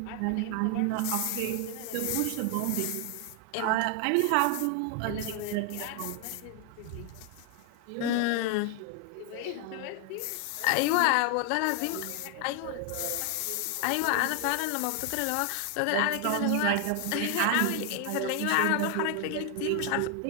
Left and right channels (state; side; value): different; both; correlation 0.00